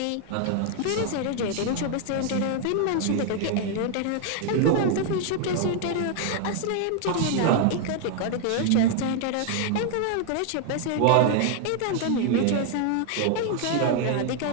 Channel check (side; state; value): both; different; correlation 0.00